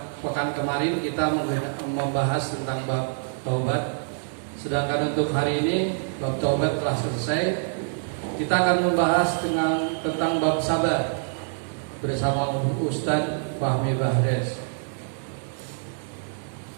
pekan kemarin kita membahas tentang bab taubat. Sedangkan untuk hari ini bab taubat telah selesai. Kita akan membahas tentang bab sabar bersama Ustadz Fahmi Bahres.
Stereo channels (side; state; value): left; silent; 61 dB below the other